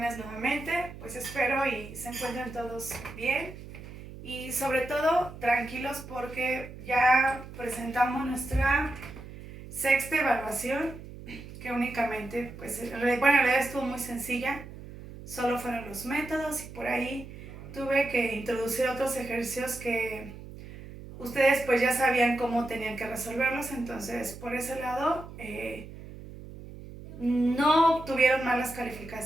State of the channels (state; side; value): noise; right; hum, 14 dB below the sound